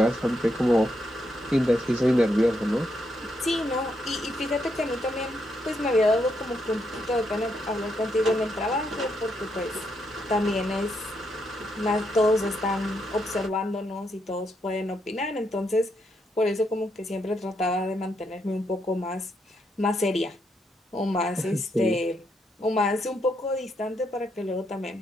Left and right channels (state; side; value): normal; both; correlation 0.78